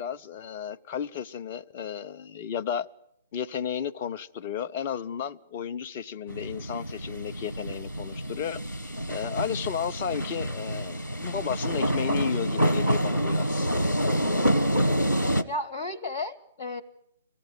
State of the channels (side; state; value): both; inverted; correlation -0.69